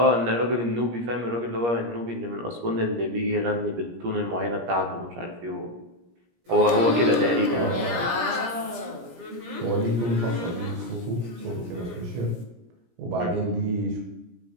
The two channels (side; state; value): left; late; 17 ms